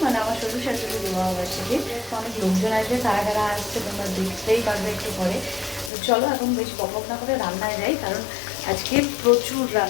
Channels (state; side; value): drops out; right; at 5.9 s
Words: মানে আমার শ্বশুর শাশুড়ির বিবাহবার্ষিকী। অনেক লোকজন আসবে, কারা কারা আসছে তোমরা দেখতেই পারবে একটু পরে। তো চলো এখন বেশি বকবক না করে রান্নায় যাই, কারণ আজকে প্রচুর